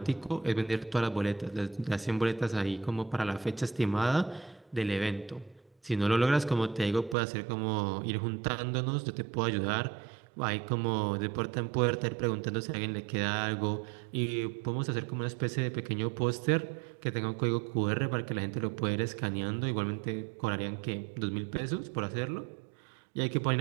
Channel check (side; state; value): left; drops out; at 7.2 s